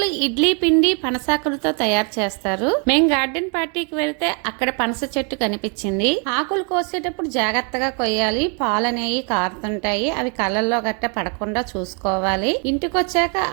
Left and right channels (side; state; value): left; quieter; 37.8 dB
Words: ఇడ్లీ పిండి పనసాకులతో తయారు చేస్తారు. మేం గార్డెన్ పార్టీకి వెళ్తే అక్కడ పనస చెట్టు కనిపించింది. ఆకులు కోసేటప్పుడు జాగ్రత్తగా కొయ్యాలి. పాలు అనేవి కారుతుంటాయి. అవి కళ్ళల్లో గట్ట పడకుండా చూసుకోవాలి. ఇంటికి వచ్చాక